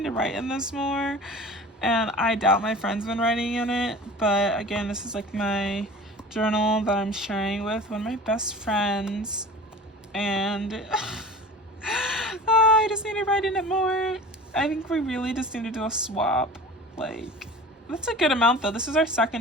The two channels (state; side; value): normal; both; correlation 0.39